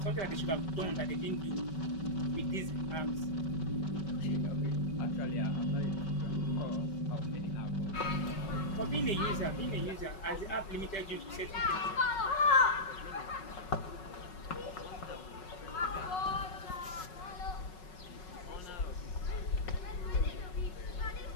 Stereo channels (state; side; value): late; right; 5.4 ms